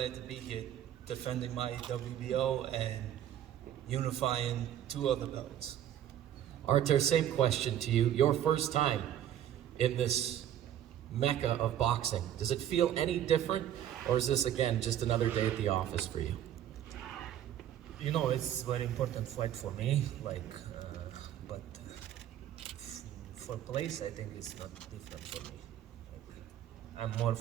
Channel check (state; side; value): quieter; left; 11.1 dB